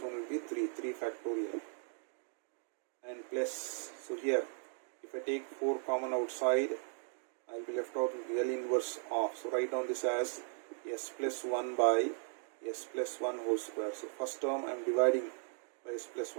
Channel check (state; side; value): silent; left; 53 dB below the other